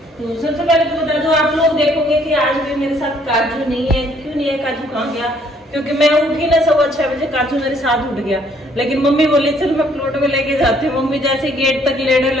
तो सबसे पहले तो बता दो, आप लोग देखोगे कि आज भी मेरे साथ काजू नहीं है। क्यों नहीं है? काजू कहाँ गया? क्योंकि मैं उठी ना 6:15 बजे, काजू मेरे साथ उठ गया। लेकिन मम्मी बोली चल मैं प्लॉट में लेके जाती हूँ। मम्मी जैसे गेट तक लेने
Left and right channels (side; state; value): both; normal; correlation 0.64